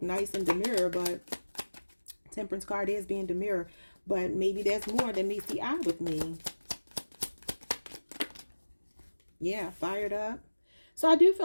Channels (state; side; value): inverted; both; correlation -1.00